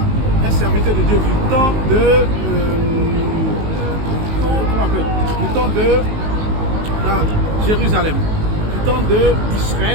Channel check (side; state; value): left; late; 19 ms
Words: un serviteur de Dieu du temps de Jérusalem, du temps